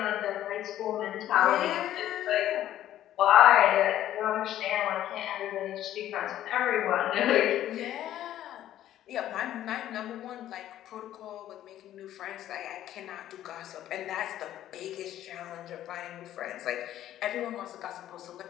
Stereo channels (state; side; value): quieter; right; 12.4 dB